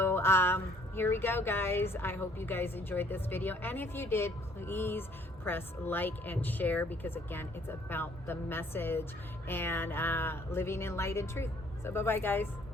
here we go, guys. I hope you guys enjoyed this video, and if you did, please press like and share, because again, it's about the message and living in light and truth. So bye bye, guys.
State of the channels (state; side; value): normal; both; correlation 0.61